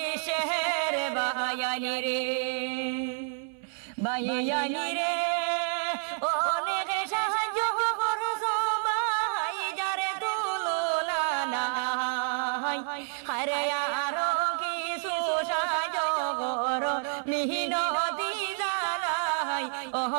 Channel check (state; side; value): silent; left; 59 dB below the other